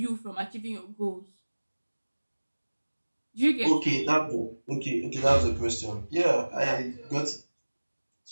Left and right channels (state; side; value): inverted; both; correlation -1.00